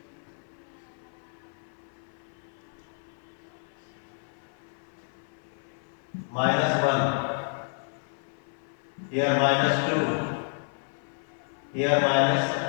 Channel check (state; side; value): silent; right; 57 dB below the other